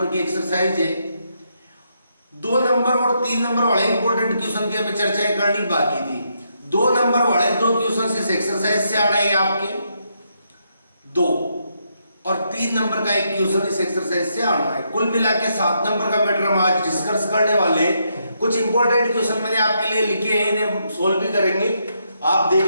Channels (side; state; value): both; inverted; correlation -0.78